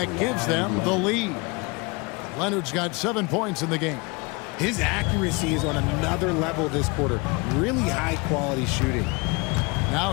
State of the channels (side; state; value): right; quieter; 27.5 dB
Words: gives them the lead. Leonard's got 7 points in the game. His accuracy is on another level this quarter. Really high-quality shooting. Now